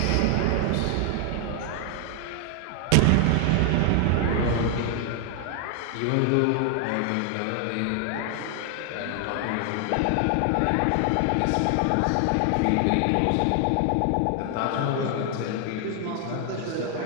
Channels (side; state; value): both; different; correlation 0.00